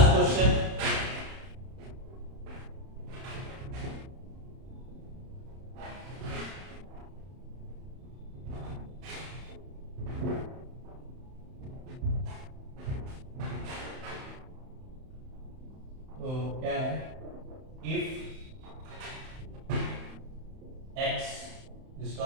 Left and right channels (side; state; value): left; late; 31 ms